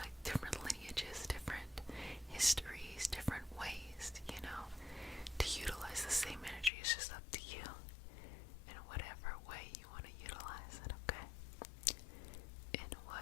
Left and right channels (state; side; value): drops out; right; at 6.7 s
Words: different lineages, different histories, different ways, to utilize the same energy. It's just up to you in whatever way you want to utilize it, okay? In